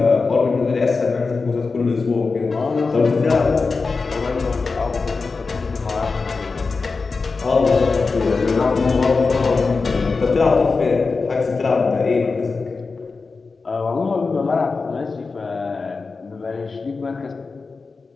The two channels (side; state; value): right; quieter; 4.3 dB